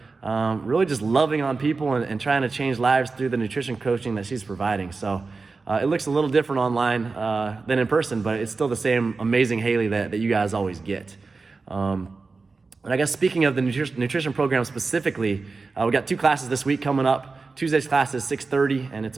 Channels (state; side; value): quieter; left; 4.1 dB